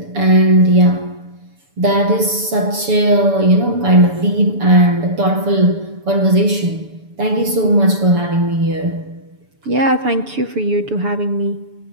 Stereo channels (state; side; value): late; left; 7.0 ms